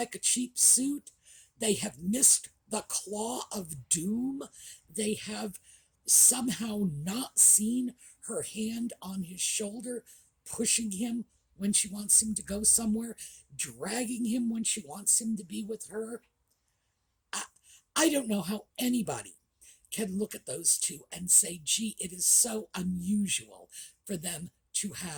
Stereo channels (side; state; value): both; identical; correlation 1.00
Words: a cheap suit. They have missed the claw of doom. They have somehow not seen her hand on his shoulder, pushing him when she wants him to go somewhere, dragging him when she wants him to be with her. I don't know how anybody can look at those two and say, gee, it is so unusual for them to